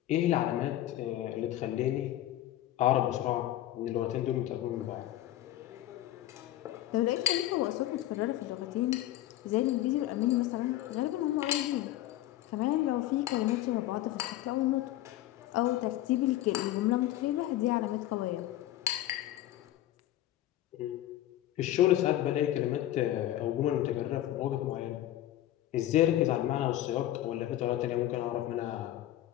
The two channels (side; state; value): right; quieter; 14.0 dB